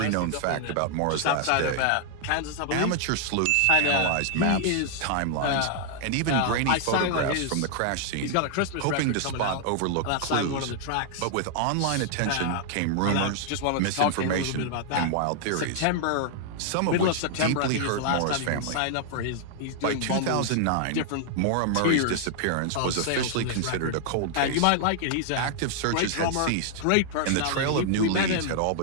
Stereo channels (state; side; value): different; both; correlation 0.00